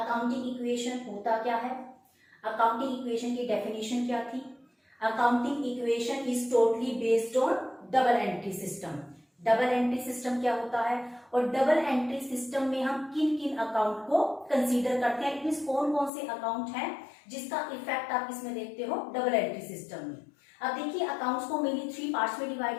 equation होता क्या है, accounting equation की definition क्या थी. Accounting equation is totally based on double entry system. Double entry system क्या होता है और डबल एंट्री सिस्टम में हम किन किन अकाउंट को कंसीडर करते हैं. इट मींस कौन कौन से अकाउंट हैं जिसका इफेक्ट आप इसमें देखते हो डबल एंट्री सिस्टम में. अब देखिए अकाउंट्स को मेनली 3 पार्ट्स में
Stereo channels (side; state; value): right; drops out; at 16.1 s